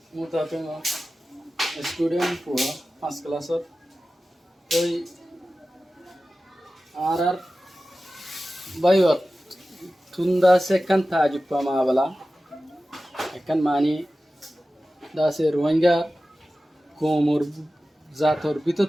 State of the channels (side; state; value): both; normal; correlation 0.95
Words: মুতাফিন স্টুডেন্ট পুয়া ফার্স্ট ক্লাসত ওই আরার বাইত তুন্দা সেকান তাজিব মাবলা একান মানি দাসে রোহিঙ্গা কোমর জাতর ভিতর